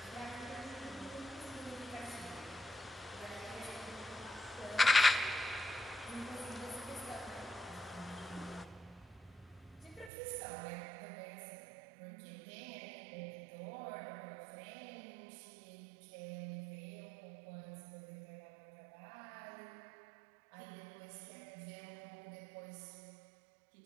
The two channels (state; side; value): drops out; left; at 10.1 s